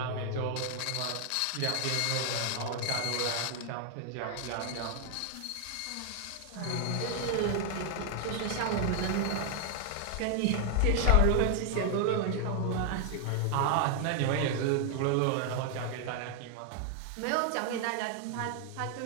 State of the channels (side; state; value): both; different; correlation 0.00